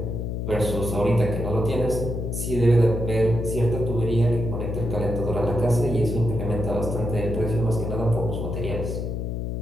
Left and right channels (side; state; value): left; noise; hum, 3 dB below the sound